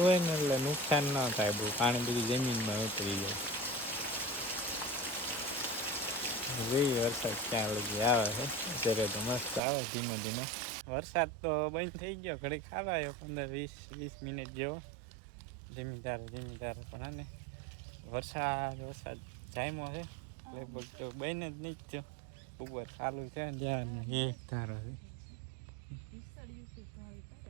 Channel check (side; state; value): left; drops out; at 9.6 s